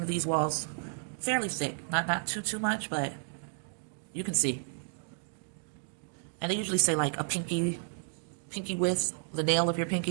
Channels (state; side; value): silent; left; digital silence